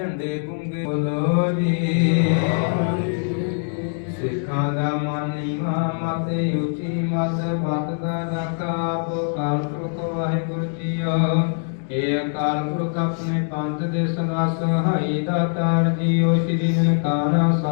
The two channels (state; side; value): silent; right; digital silence